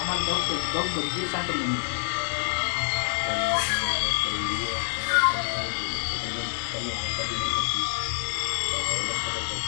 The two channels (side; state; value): right; silent; digital silence